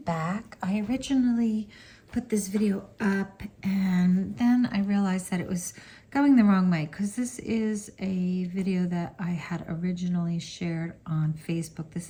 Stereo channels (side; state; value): both; identical; correlation 1.00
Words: back. I originally put this video up and then I realized that it was going the wrong way because this is a video that I had originally shared on Facebook. This